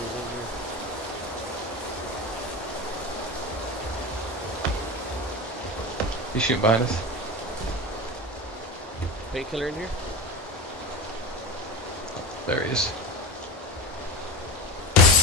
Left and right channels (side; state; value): both; normal; correlation 0.25